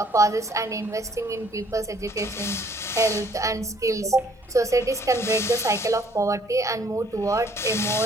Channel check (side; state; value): both; normal; correlation 0.61